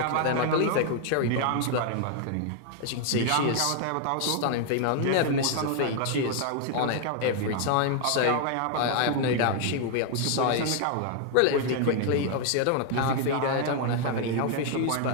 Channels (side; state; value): both; different; correlation 0.00